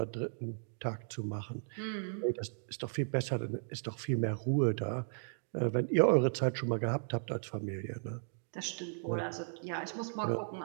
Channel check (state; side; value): silent; left; digital silence